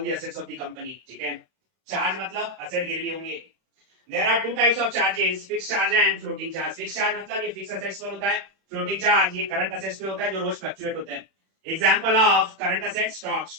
the assets of the company. ठीक है, चार्ज मतलब असेट गिरवी होंगे. There are two types of charges, fixed charge and floating charge. Fixed charge मतलब ये fix assets पर होता है. फ्लोटिंग चार्ज ये करंट असेट्स पे होता है जो रोज फ्लक्चुएट होते हैं. Example of current asset stock.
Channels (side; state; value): left; late; 31 ms